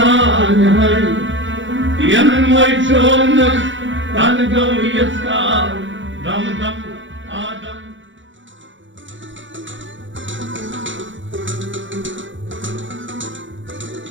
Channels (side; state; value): left; late; 0.55 ms